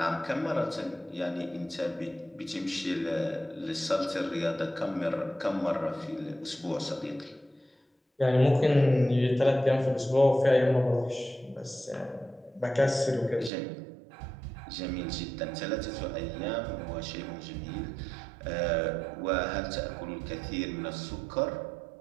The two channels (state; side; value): drops out; left; at 13.5 s